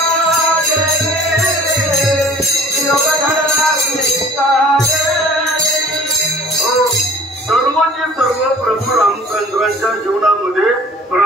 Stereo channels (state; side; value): normal; both; correlation 0.48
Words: सर्वचे सर्व प्रभू रामचंद्रांच्या जीवनामध्ये